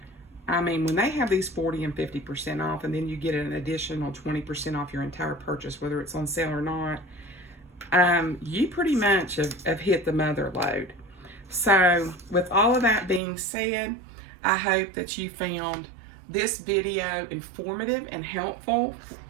I mean, when they have these 40 and 50% off, and then you get an additional 20% off your entire purchase, whether it's on sale or not, you pretty much have hit the mother load. So with all of that being said, I hope that you found this video informative and helpful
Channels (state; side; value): drops out; left; at 13.2 s